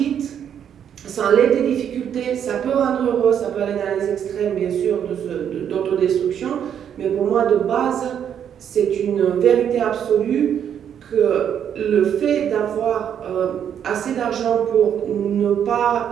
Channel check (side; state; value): left; quieter; 8.9 dB